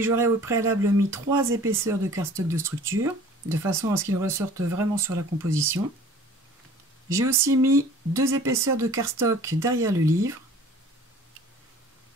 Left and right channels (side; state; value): both; normal; correlation 0.48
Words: j'aurai au préalable mis 3 épaisseurs de cardstock de structure, de façon à ce qu'il ressorte vraiment sur la composition. J'ai aussi mis 2 épaisseurs de cardstock derrière le livre.